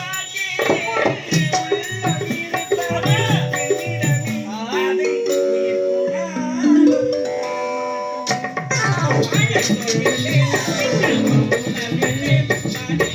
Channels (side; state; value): both; identical; correlation 1.00